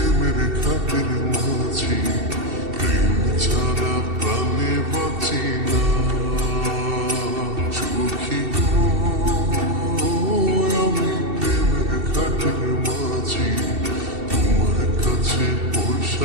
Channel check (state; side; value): late; left; 2.7 ms